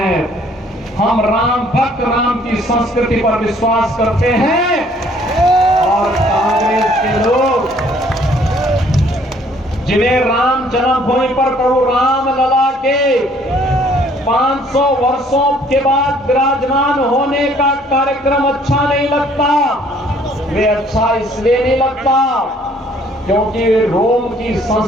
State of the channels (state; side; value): normal; both; correlation 0.60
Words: हम राम भक्त राम की संस्कृति पर विश्वास करते हैं और कांग्रेस के लोग जिन्हें राम जन्मभूमि पर प्रभु राम लला के 500 वर्षों के बाद विराजमान होने का कार्यक्रम अच्छा नहीं लगता। वे अच्छा इसलिए नहीं लगता क्योंकि वे रोम की